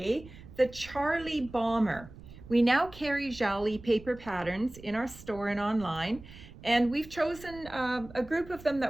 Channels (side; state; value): right; noise; rumble, 18 dB below the sound